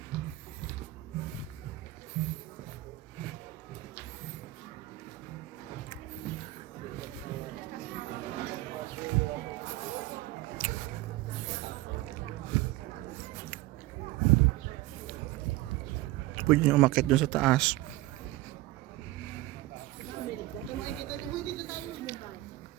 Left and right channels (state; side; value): quieter; left; 17.8 dB